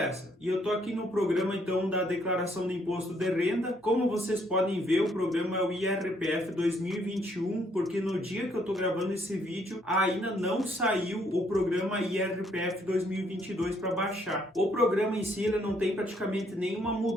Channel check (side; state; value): both; normal; correlation 0.69